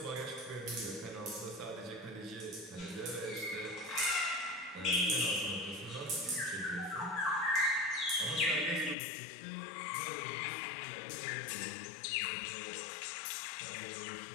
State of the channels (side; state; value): right; drops out; at 9.0 s